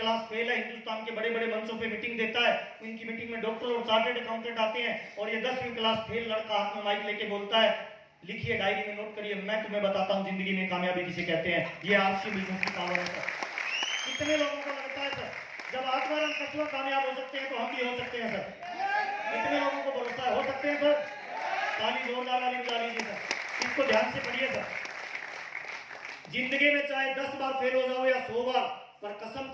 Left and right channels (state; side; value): identical; both; correlation 1.00